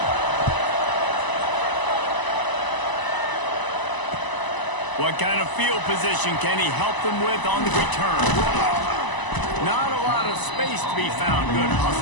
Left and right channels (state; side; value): late; right; 1.0 ms